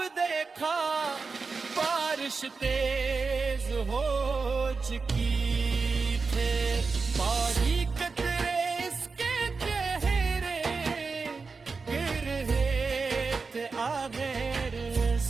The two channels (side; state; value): left; quieter; 4.6 dB